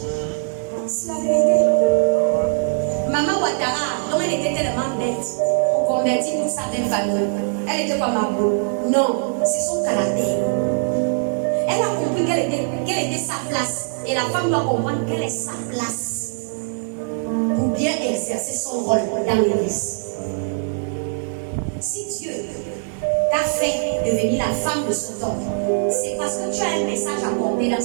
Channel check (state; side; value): silent; left; 65 dB below the other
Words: C'est la vérité. Maman Ouattara, dont elle était tellement bête, on convertit toute sa belle famille. Elle était pas Mabo. Non, c'est son caractère. Elle a compris quelle était sa place. Et la femme doit comprendre quelle est sa place. bien exercer son rôle dans l'église. Si Dieu t'a fait devenir la femme de son homme, c'est parce que tu as un message à porter dans